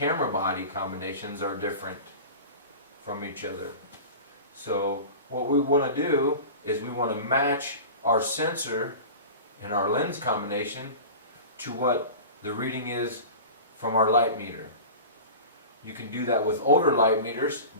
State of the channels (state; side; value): inverted; both; correlation -0.34